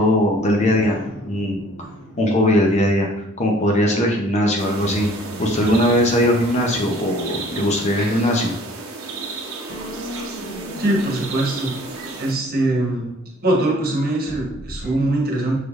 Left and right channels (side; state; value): both; normal; correlation 0.55